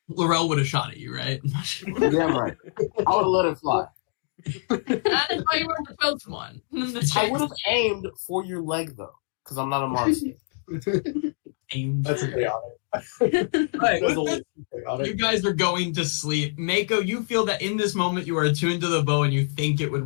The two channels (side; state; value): right; silent; 62 dB below the other